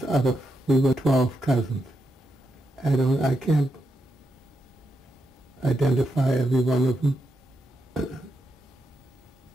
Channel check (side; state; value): both; normal; correlation 0.84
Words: out of, we were 12 cousins. I can't identify every one of them,